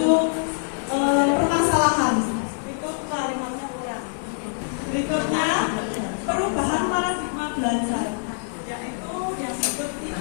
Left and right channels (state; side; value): silent; right; 62 dB below the other